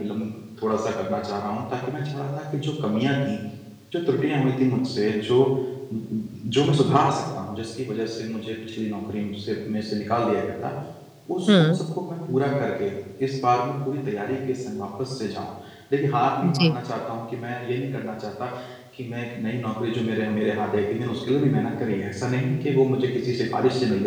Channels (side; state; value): both; identical; correlation 1.00